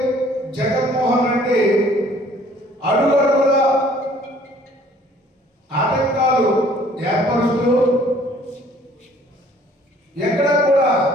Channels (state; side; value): normal; both; correlation 0.57